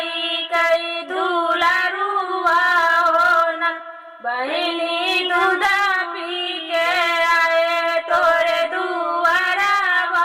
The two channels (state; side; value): identical; both; correlation 1.00